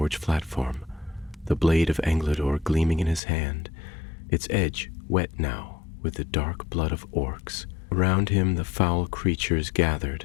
platform, the blade of Angladur gleaming in his hand, its edge wet now with the dark blood of orcs. Around him the foul creatures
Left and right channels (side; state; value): right; drops out; at 3.2 s